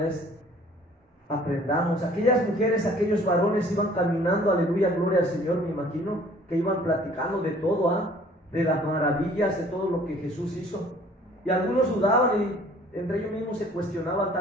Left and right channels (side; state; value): both; normal; correlation 0.54